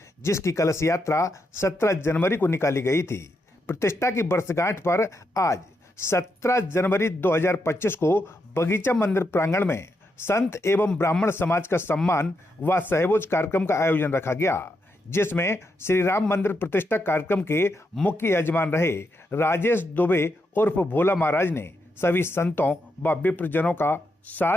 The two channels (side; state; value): both; normal; correlation 0.82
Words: जिसकी कलश यात्रा 17 जनवरी को निकाली गई थी। प्रतिष्ठा की वर्षगांठ पर आज 17 जनवरी 2025 को बगीचा मंदिर प्रांगण में संत एवं ब्राह्मण समाज का सम्मान व सहभोज कार्यक्रम का आयोजन रखा गया, जिसमें श्री राम मंदिर प्रतिष्ठा कार्यक्रम के मुख्य यजमान रहे राजेश दुबे उर्फ भोला महाराज ने सभी संतों व विप्रजनों का